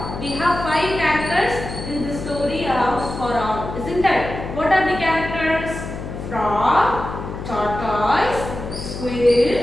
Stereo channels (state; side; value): noise; left; hum, 8 dB below the sound